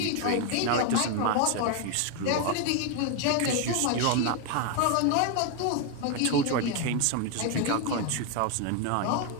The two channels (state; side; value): different; both; correlation 0.01